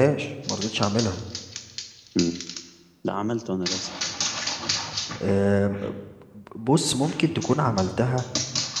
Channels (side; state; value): both; identical; correlation 1.00